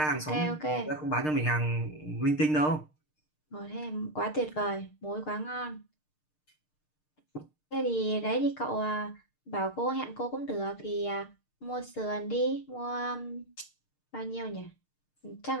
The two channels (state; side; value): late; right; 6.6 ms